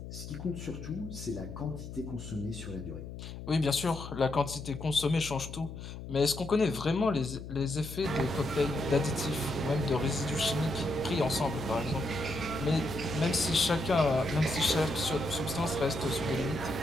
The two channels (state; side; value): noise; left; hum, 10 dB below the sound